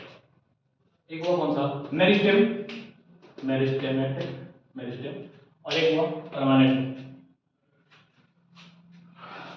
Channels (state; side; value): identical; both; correlation 1.00